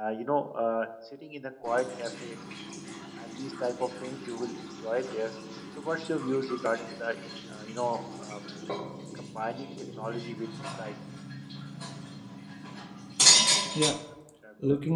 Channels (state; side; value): identical; both; correlation 1.00